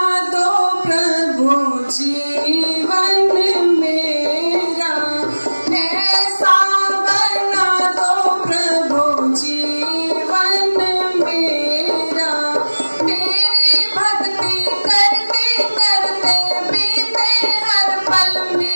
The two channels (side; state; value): both; inverted; correlation -1.00